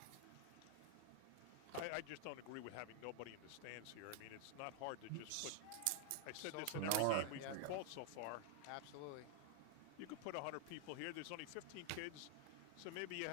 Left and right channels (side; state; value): both; different; correlation 0.00